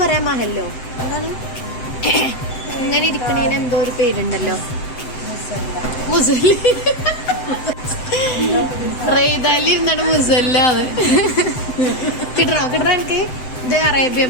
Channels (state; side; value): late; right; 7.8 ms